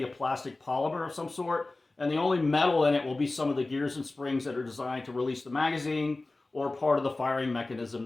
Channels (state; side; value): quieter; right; 3.1 dB